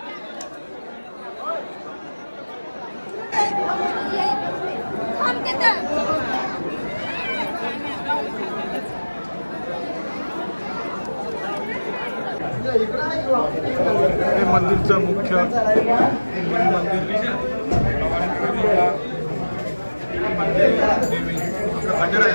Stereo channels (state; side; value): inverted; both; correlation -1.00